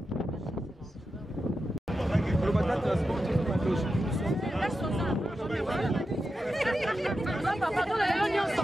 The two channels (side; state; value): both; normal; correlation 0.90